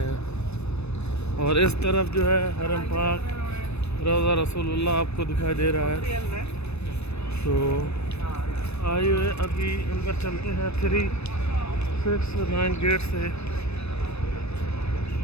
हैं, और इस तरफ जो है हरम पाक रौज़ा रसूलुल्लाह आपको दिखाई दे रहा है। तो आइए अभी अंदर चलते हैं 369 गेट से,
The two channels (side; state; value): right; late; 0.80 ms